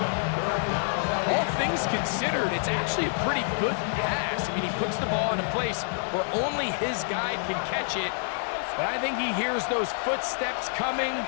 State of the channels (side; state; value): right; silent; digital silence